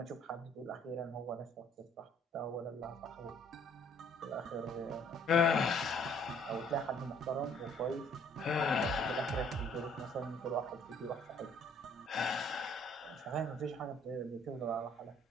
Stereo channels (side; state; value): both; normal; correlation 0.59